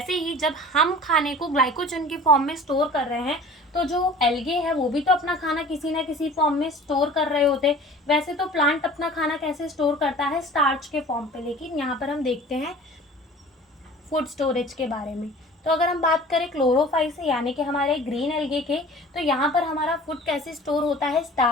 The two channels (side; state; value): both; normal; correlation 0.44